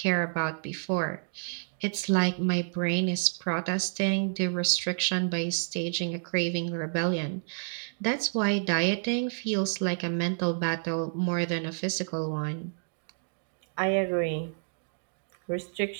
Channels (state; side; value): silent; left; digital silence